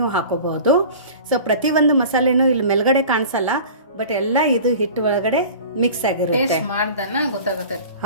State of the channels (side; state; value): both; inverted; correlation -0.39